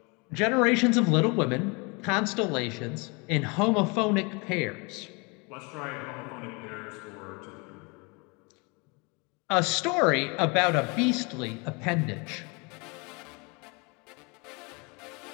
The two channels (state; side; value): quieter; right; 29.8 dB